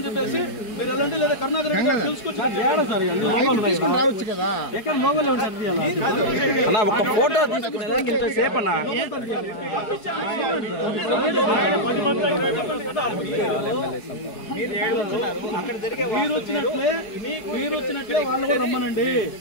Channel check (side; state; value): right; late; 4.7 ms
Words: చెప్పేసి మీరు ఎలాంటి లేదా కరుణాకర్ రెడ్డి గారు తెలుసుకొచ్చి ఒక ఫోటో తీసుకునేదానికి ఇంతసేపు అన్నా మీరు వచ్చినట్లే వాళ్ళు కూడా రమ్మనండి.